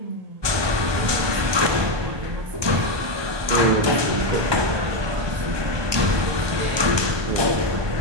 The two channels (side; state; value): left; late; 1.2 ms